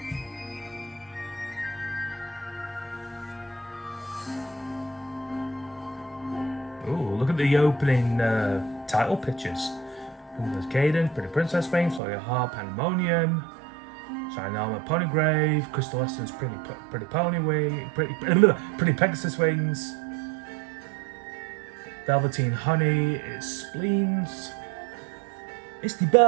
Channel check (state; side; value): drops out; left; at 12.0 s